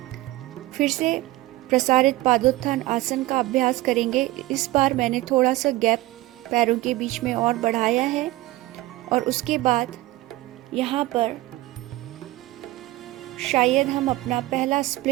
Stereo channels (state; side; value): quieter; left; 18.1 dB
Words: फिर से प्रसारित पादोत्थान आसन का अभ्यास करेंगे। इस बार मैंने थोड़ा सा गैप पैरों के बीच में और बढ़ाया है, और उसके बाद यहाँ पर शायद हम अपना पहला